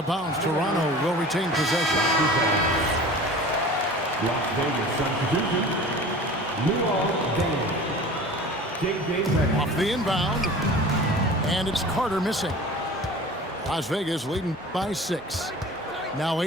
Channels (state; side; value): normal; both; correlation 0.40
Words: bounds. Toronto will retain possession. Las Vegas substitution. Off the inbound. And it's Carter missing. Las Vegas leading by 6. Now